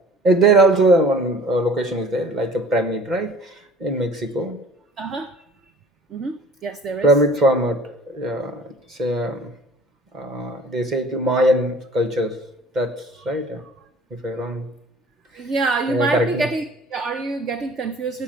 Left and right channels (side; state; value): both; normal; correlation 0.48